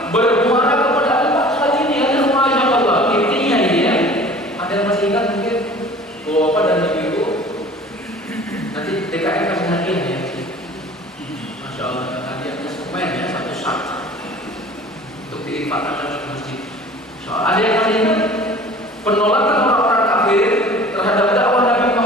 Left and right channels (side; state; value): both; normal; correlation 0.45